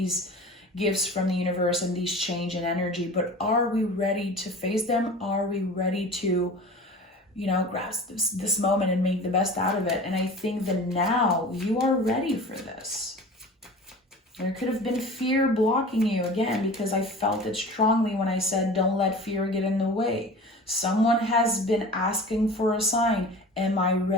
gifts from the universe and these change in energy. But are we ready to face them? Are we ready to, grasp this moment and make the best out of it? And I think that now you are ready for this. There could have been fear blocking you, again, because I felt it strongly when I said, don't let fear get in the way. Someone has been asking for a sign. Am I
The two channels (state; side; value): normal; both; correlation 0.38